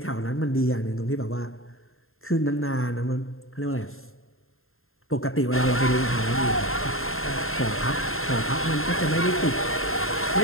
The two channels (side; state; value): right; late; 0.61 ms